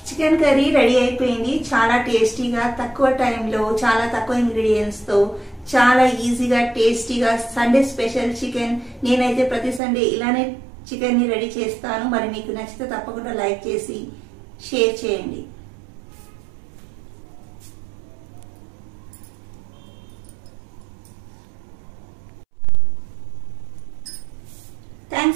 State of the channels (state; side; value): drops out; left; at 9.8 s